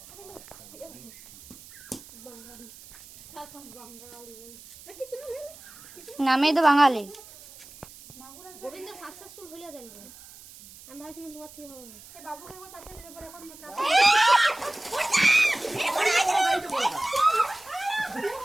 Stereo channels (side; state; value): right; noise; hiss, 19 dB below the sound